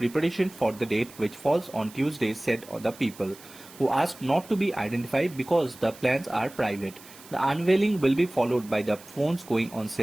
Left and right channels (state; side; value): noise; right; hiss, 20 dB below the sound